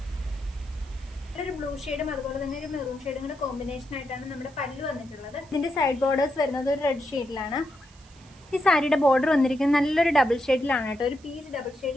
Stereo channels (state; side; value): noise; right; hiss, 27 dB below the sound